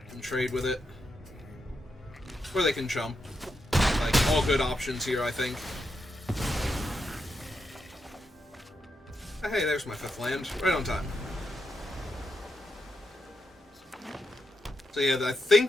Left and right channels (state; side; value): normal; both; correlation 0.84